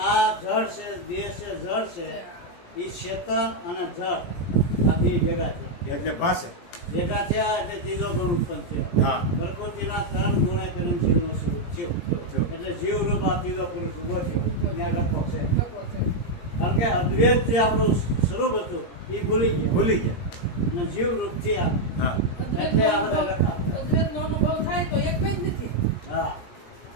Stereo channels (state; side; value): late; right; 17 ms